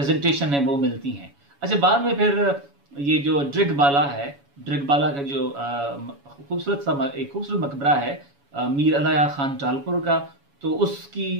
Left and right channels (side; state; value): left; late; 7.1 ms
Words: है वो मिलती हैं। अच्छा, बाद में फिर ये जो ड्रिगबाला है, ड्रिगबाला का जो एक खूबसूरत मकबरा है मीर अलाया खान टालपुर का, तो उसकी